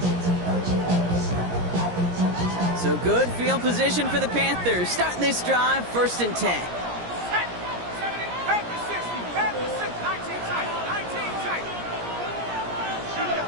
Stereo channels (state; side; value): late; left; 17 ms